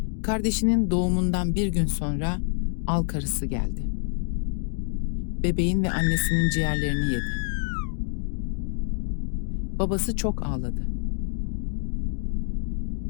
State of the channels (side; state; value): right; silent; digital silence